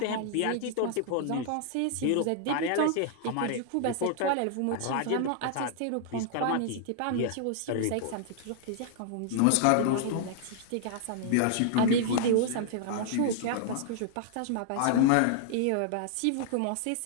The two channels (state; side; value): different; both; correlation 0.00